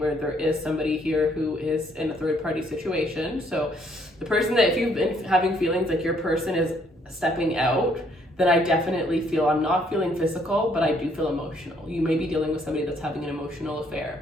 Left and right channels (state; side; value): normal; both; correlation 0.67